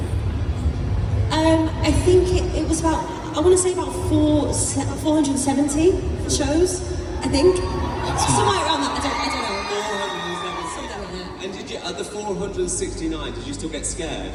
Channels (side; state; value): both; identical; correlation 1.00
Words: I think it was about, I want to say about 470 shows, I think. Somewhere around that, I don't know. 470. Something like that. And did you, at the 469, did you still get scared?